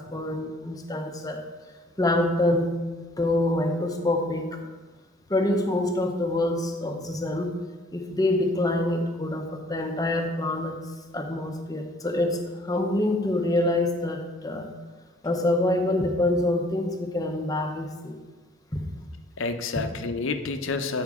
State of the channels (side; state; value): both; normal; correlation 0.57